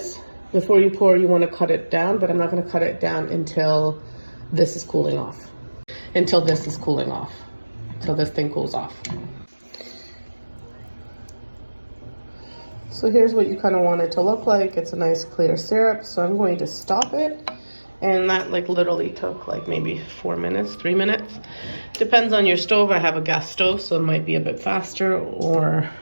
Before you pour, you want to cut it down, but I'm not going to cut it down until this is cooling off. Until this thing cools off. So here's what you kind of want it to look like. It's a nice clear syrup. So I'm going to stop it. And that literally took maybe 4 minutes, 3 minutes. Depends on your stove. I have a gas stove, so it might be a bit faster, or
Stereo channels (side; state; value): both; inverted; correlation -1.00